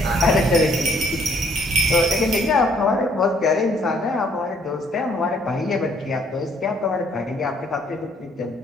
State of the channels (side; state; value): both; normal; correlation 0.64